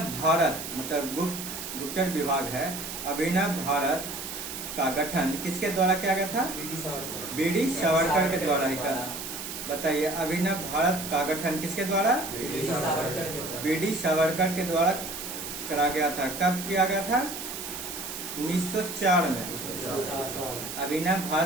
भारत मतलब गुप्तचर विभाग है, अभिनव भारत का गठन किसके द्वारा किया गया था? ब्रिटिश सावरकर के द्वारा ही था। बताइए, अभिनव भारत का गठन किसके द्वारा? ब्रिटिश सावरकर के द्वारा करा गया था। कब किया गया था? 1904 में। अभिनव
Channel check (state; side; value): noise; right; hiss, 7 dB below the sound